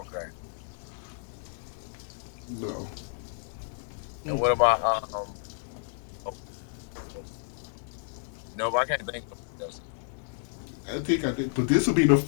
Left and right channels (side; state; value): right; silent; digital silence